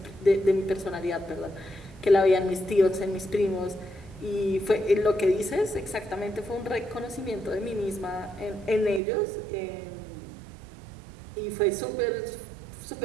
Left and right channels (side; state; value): left; drops out; at 9.0 s